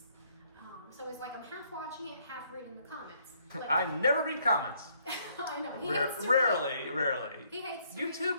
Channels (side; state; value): both; inverted; correlation -0.68